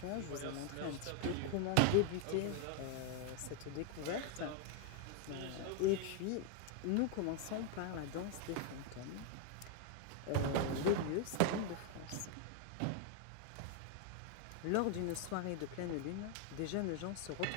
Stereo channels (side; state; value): both; different; correlation 0.00